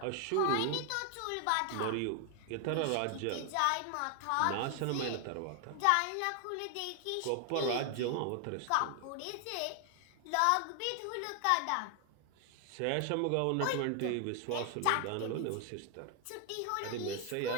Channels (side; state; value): both; different; correlation 0.00